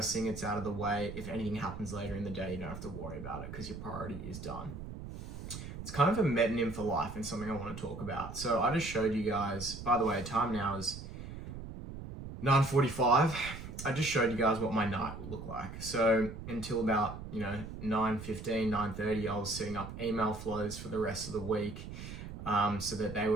thing, it's out of the way. If anything happens later in the day, you don't have to worry about it because your priority is done. It's kind of a metonym for life and something I want to talk about. So I just showed you guys, by the way, time now is 9:45. I just showed you guys what my night would look like. So until about, 9:15, 9:30, I was setting up email flows for the rest of the week, so that they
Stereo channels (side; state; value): right; noise; rumble, 10 dB below the sound